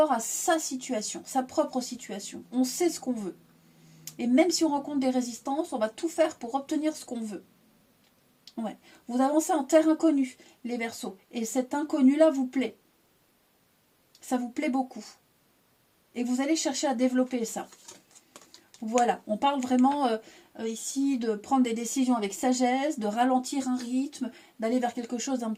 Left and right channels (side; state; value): both; identical; correlation 1.00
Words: à sa situation, sa propre situation. On sait ce qu'on veut. Et même si on rencontre des résistances, on va tout faire pour obtenir ce qu'on veut. Ouais. Vous avancez en terre inconnue, les Verseaux. Et cet inconnu-là vous plaît. Ça vous plaît beaucoup. Et vous allez chercher à développer ça. Voilà, on parle vraiment ici de prendre des décisions avec sagesse, de ralentir un rythme, d'aller vers quelque chose d'un